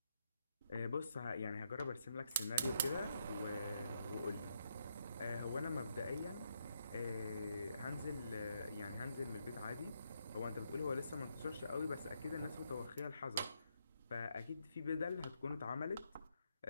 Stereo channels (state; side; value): inverted; both; correlation -0.79